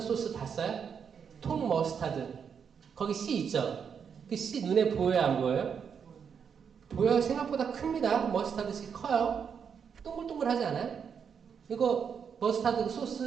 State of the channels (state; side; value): quieter; left; 6.9 dB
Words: 소스 봤어요? 통 머스타드. 거기 씨 있죠? 그 씨 눈에 보여요, 안 보여요? 보여요. 생각보다 큽니다. 머스타드 씨 커요. 동글동글하지 않아요? 이거 머스타드